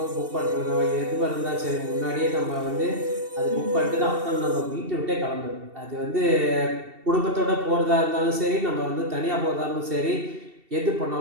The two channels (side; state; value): left; late; 2.7 ms